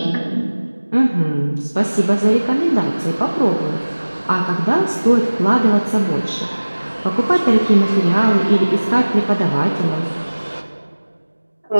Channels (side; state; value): both; inverted; correlation -1.00